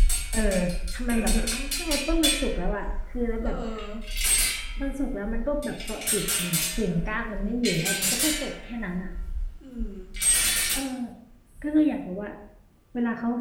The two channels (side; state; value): both; identical; correlation 1.00